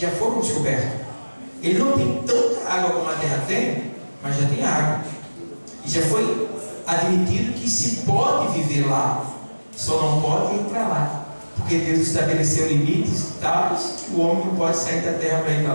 já foram descobertos. Ele não tem tanta água como a Terra tem, mas já tem água. E já foi admitido que se pode viver lá, só não pode ir para lá. Porque Deus estabeleceu limites tais que o homem não pode sair da terra para ir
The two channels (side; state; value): both; inverted; correlation -1.00